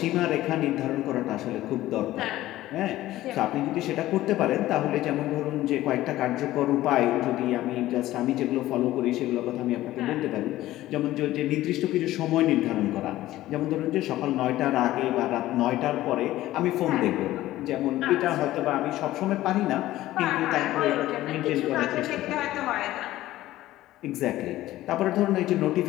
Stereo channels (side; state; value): right; quieter; 15.4 dB